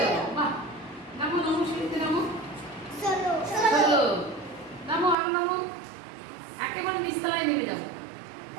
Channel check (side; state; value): left; drops out; at 5.2 s